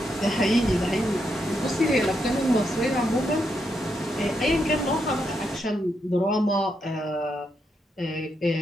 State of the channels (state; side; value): normal; both; correlation 0.81